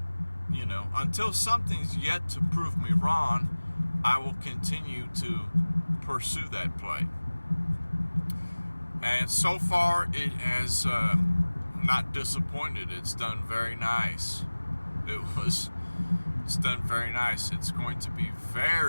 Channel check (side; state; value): both; inverted; correlation -1.00